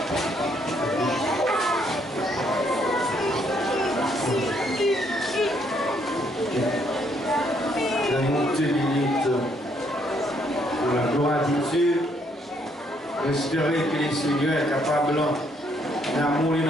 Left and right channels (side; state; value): both; normal; correlation 0.70